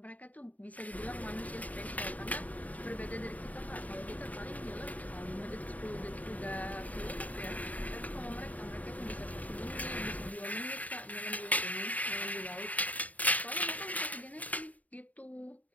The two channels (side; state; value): right; late; 0.073 ms